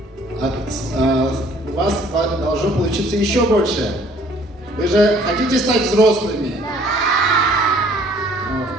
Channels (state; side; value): normal; both; correlation 0.58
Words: у вас должно получиться еще больше. Вы же хотите стать взрослыми? Да!